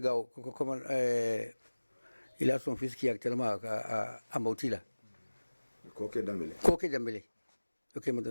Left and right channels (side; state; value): both; inverted; correlation -1.00